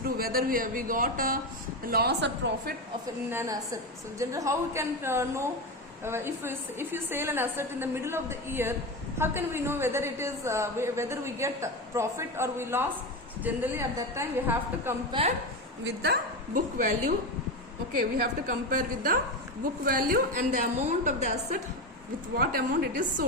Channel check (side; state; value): both; normal; correlation 0.17